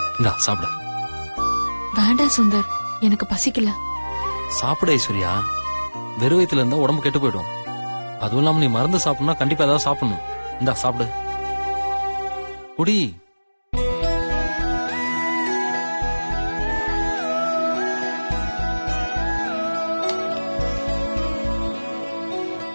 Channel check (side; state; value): both; inverted; correlation -1.00